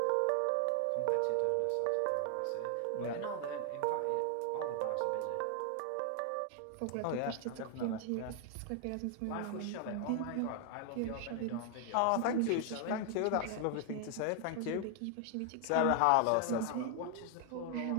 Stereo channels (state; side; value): different; both; correlation 0.00